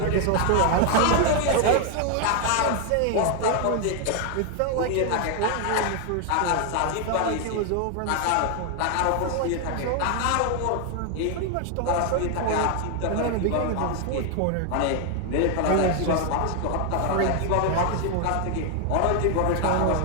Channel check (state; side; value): different; both; correlation 0.00